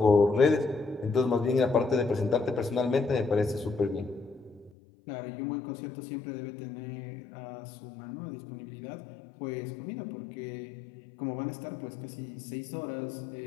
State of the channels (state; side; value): drops out; right; at 4.7 s